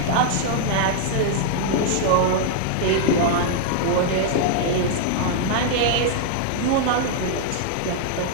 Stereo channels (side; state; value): both; different; correlation 0.00